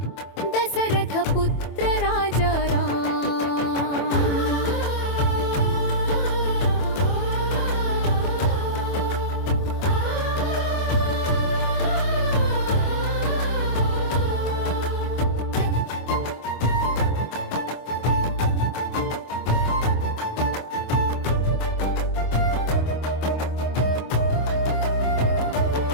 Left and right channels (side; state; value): right; late; 25 ms